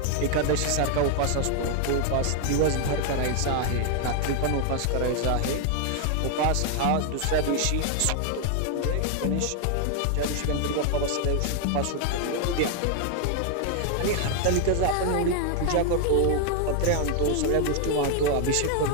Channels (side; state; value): both; different; correlation 0.00